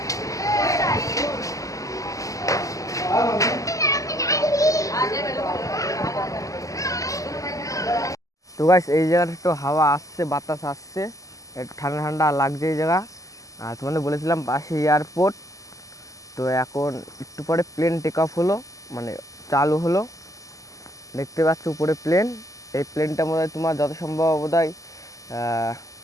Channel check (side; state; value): right; late; 0.16 ms